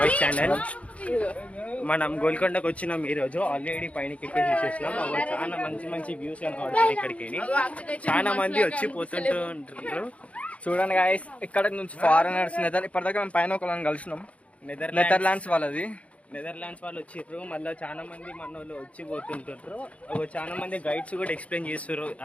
channel. మనం గోల్కొండకు వచ్చినాం ఈరోజు. ఆల్రెడీ పైన ఎక్కేసేసినాం. చాలా మంచి మంచి వ్యూస్ కనబడుతుంది ఇక్కడికి. చాలా మంది వచ్చి పోతుంటారు. చూడండి గాయస్, ఇక్కడ నుంచి ఫారినర్స్ ఇప్పటిదాకా మేము పైన ఒకళ్ళని కలిసినాం. నెదర్లాండ్స్ వాళ్ళు వచ్చిర్రు. మళ్ళీ చాలా మంది మన వాళ్ళు వచ్చి పోతుంటారు. చాలా మంది గైడ్స్ కూడా ఎక్స్ప్లెయిన్ చేస్తారు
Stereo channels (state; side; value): late; right; 0.064 ms